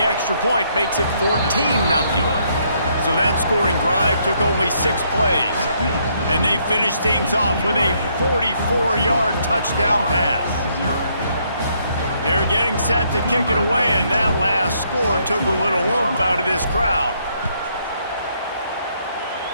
extra point makes it 14-0. So that scoring drive took only 6 plays. And they finished things off with a 44-yard touchdown pass. They're getting set to kick it away, and that last score took a little oomph out of this crowd.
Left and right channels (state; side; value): inverted; both; correlation -0.71